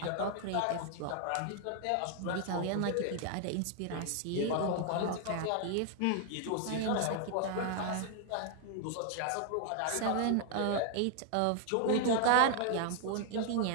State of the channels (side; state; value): both; different; correlation 0.00